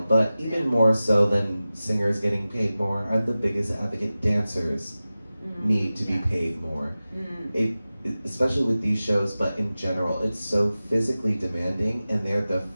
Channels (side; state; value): both; inverted; correlation -0.96